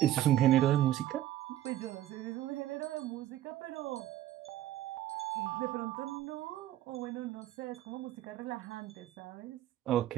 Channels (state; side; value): quieter; left; 13.3 dB